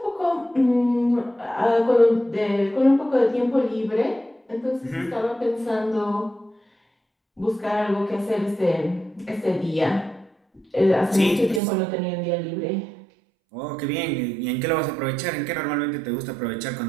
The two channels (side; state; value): left; drops out; at 11.6 s